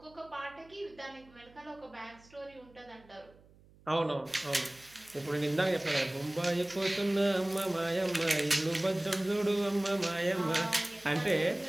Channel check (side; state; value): right; noise; hum, 26 dB below the sound